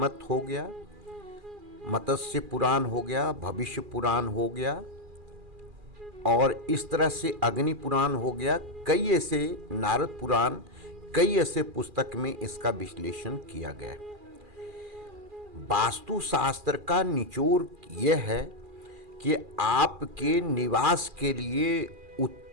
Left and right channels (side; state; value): left; late; 2.4 ms